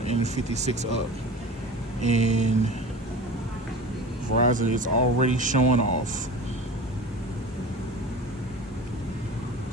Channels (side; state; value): both; normal; correlation 0.35